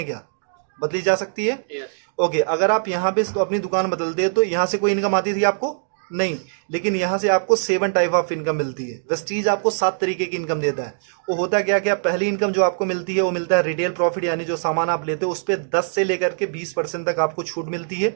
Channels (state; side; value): silent; left; digital silence